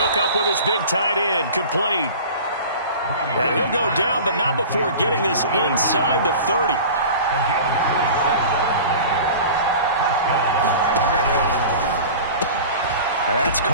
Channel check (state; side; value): inverted; both; correlation -0.38